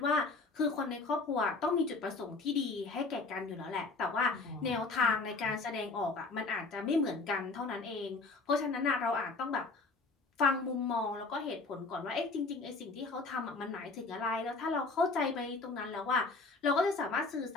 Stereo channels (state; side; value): quieter; right; 3.7 dB